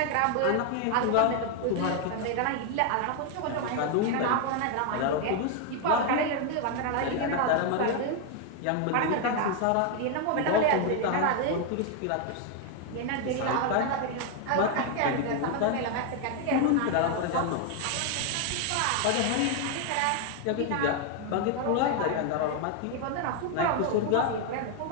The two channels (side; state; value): both; different; correlation 0.01